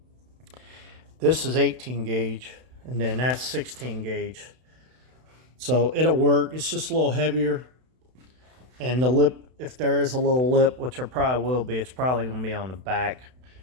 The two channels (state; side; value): late; left; 32 ms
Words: this is 18 gauge, and then that's 16 gauge. So it'll work. It's just a little heavier, and the lip, if there is a little lip, which there probably will be, it's probably going to be on the back,